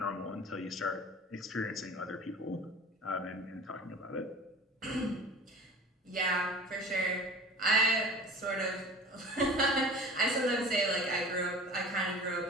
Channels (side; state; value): both; normal; correlation 0.40